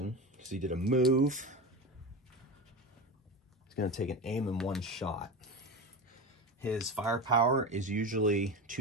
because he did a move. He's going to take an aim and 1 shot. His firepower is usually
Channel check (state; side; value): normal; both; correlation 0.24